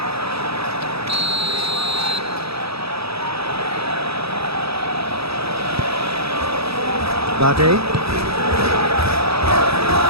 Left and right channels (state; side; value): late; left; 0.77 ms